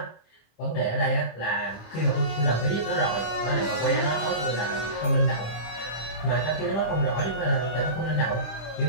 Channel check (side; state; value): right; late; 26 ms